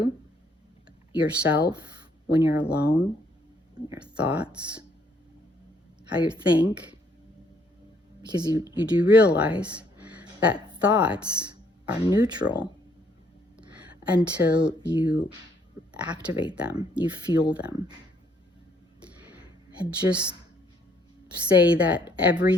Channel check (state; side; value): normal; both; correlation 0.67